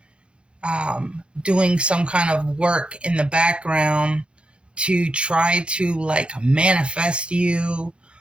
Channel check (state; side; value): late; left; 0.057 ms